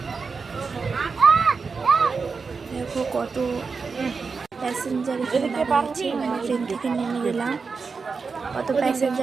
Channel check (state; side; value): quieter; left; 4.9 dB